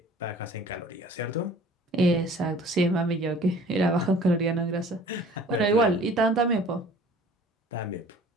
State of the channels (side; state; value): both; normal; correlation 0.49